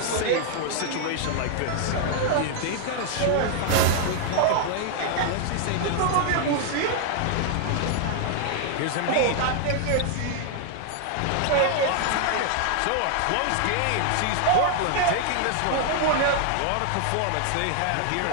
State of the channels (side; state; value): both; different; correlation 0.00